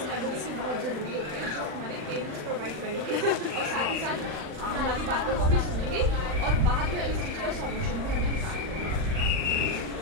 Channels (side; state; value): left; late; 40 ms